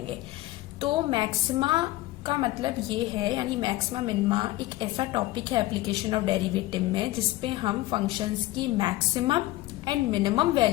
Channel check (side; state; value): right; quieter; 17.2 dB